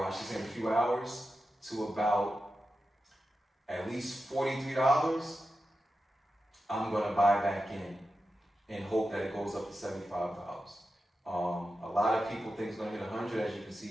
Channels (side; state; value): both; normal; correlation 0.91